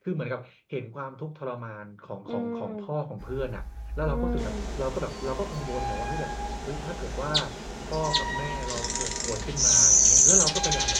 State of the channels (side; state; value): both; identical; correlation 1.00